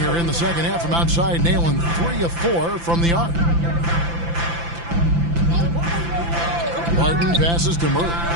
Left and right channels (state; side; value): late; left; 5.9 ms